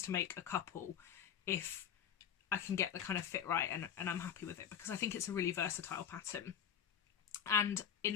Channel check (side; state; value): right; quieter; 8.7 dB